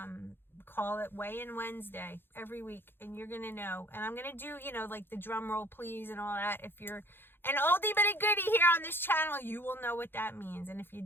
call it Weigh-in Wednesday every week, and you're going to know. And I'm going to do, like the drum roll please and all that. If you're an oldie but a goodie here on this channel, you will know what that means. And if you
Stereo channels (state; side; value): late; right; 0.10 ms